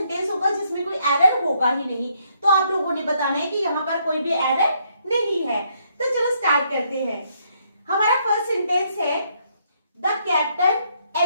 होगा जिसमें कोई एरर होगा ही नहीं, तो आप लोगों ने बताना है कि यहाँ पर कोई भी एरर नहीं है। तो चलो स्टार्ट करते हैं। हमारा फर्स्ट सेंटेंस है, the captain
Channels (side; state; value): both; inverted; correlation -0.72